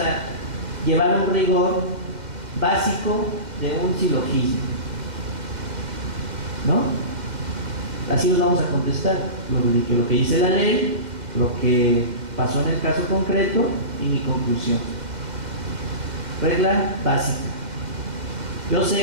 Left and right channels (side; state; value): left; late; 2.0 ms